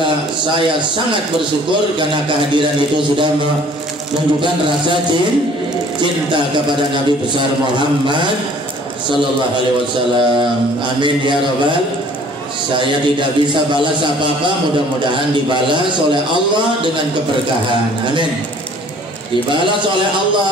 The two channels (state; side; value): normal; both; correlation 0.54